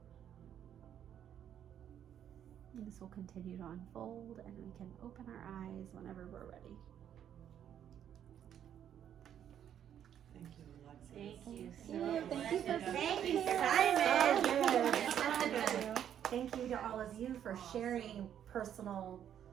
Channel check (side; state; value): left; quieter; 9.7 dB